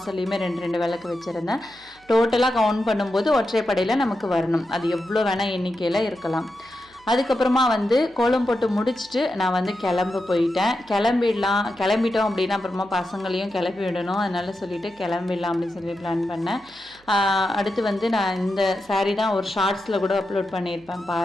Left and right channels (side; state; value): right; noise; hum, 29 dB below the sound